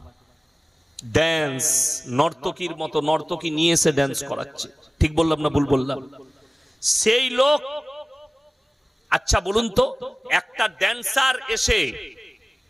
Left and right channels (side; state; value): both; normal; correlation 0.98